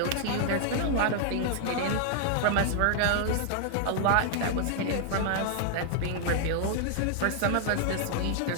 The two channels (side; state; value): both; different; correlation 0.00